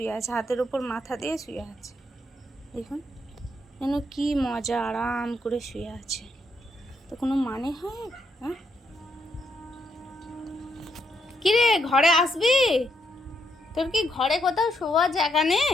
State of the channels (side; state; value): both; normal; correlation 0.77